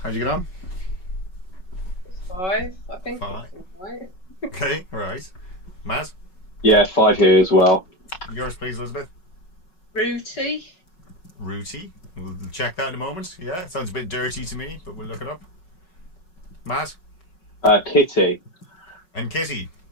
How'd you get on? 5, I think. 5. Right. Okay, right. Matt? Yeah, 5 here as well. Yours, please, Elizabeth. Rooty. Rooty. We'll check that in a moment. Yeah, it sounds a bit dirty to me, but we'll look it up. Matt? Kitty. And Kitty.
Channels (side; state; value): right; late; 5.4 ms